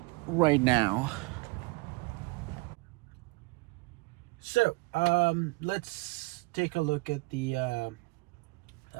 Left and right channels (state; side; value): quieter; left; 24.6 dB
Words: right now. So let's take a look at the